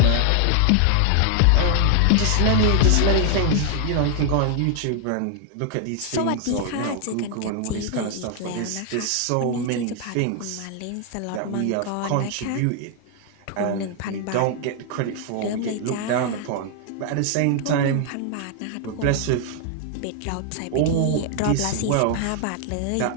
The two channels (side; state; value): both; different; correlation 0.00